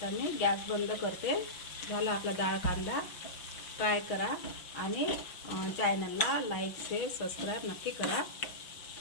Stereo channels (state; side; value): late; right; 5.9 ms